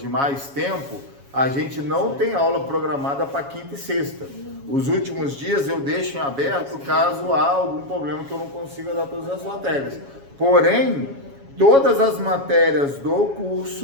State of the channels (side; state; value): left; late; 7.2 ms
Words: mais tempo, a gente não tem aula programada para quinta e sexta. Os últimos dias eu deixo em aberto caso há algum problema que eu não consiga dar todas as matérias. Porém, todas as matérias do